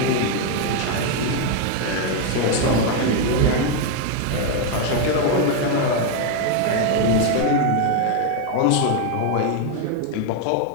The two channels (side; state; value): both; different; correlation 0.01